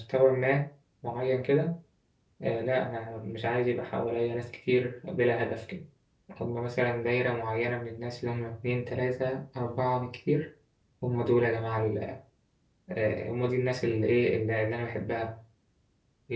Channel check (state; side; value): identical; both; correlation 1.00